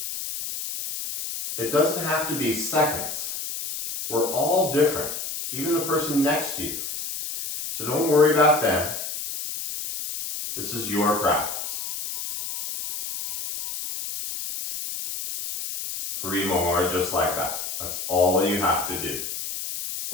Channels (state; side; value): noise; left; hiss, 6 dB below the sound